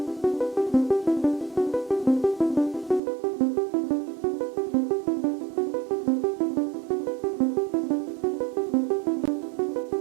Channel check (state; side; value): drops out; left; at 3.0 s